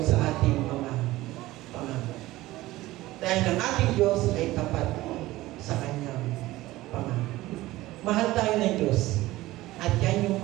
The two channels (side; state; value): left; quieter; 17.6 dB